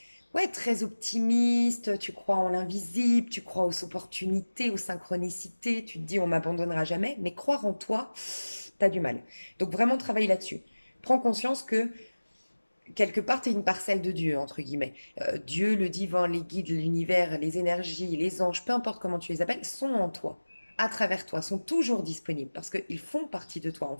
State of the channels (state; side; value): inverted; both; correlation -1.00